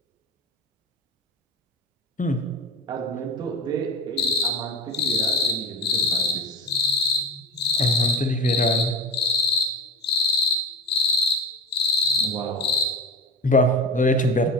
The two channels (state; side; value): normal; both; correlation 0.29